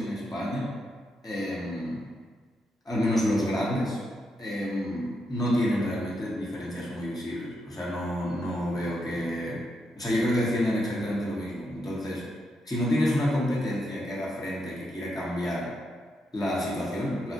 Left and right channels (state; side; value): normal; both; correlation 0.82